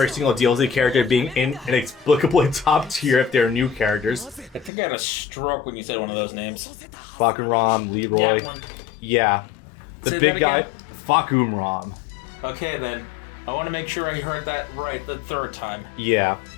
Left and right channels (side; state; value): right; drops out; at 4.7 s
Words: single DLC character being inexplicably top tier if they're new characters. I think I had a stroke when you said one of those names. Fakumran, Leroy. Yeah, one. Yeah. The Say big that again? guy, Fakumran. Okay then. I want to make sure I heard that right the third time. Yeah.